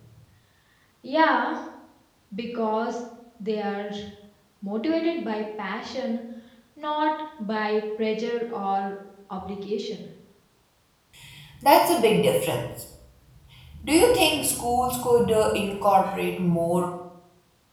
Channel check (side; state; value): both; identical; correlation 1.00